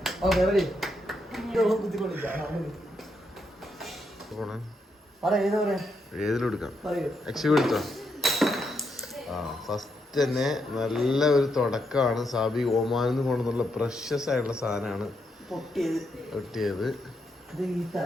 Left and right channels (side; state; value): both; normal; correlation 0.80